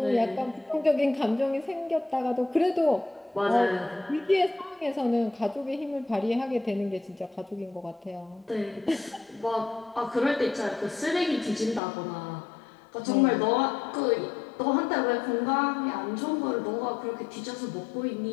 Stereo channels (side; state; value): right; drops out; at 11.8 s